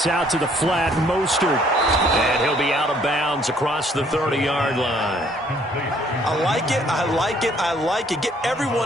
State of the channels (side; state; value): both; normal; correlation 0.62